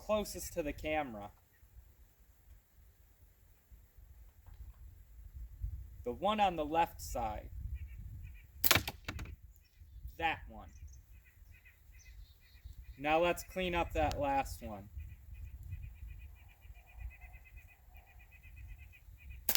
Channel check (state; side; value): identical; both; correlation 1.00